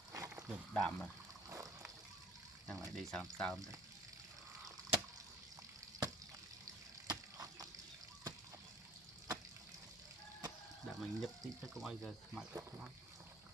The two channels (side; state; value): both; normal; correlation 0.50